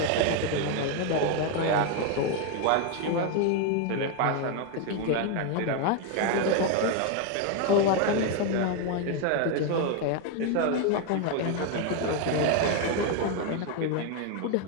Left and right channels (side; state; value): both; different; correlation 0.01